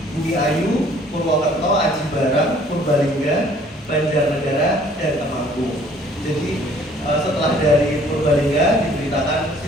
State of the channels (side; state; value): both; normal; correlation 0.57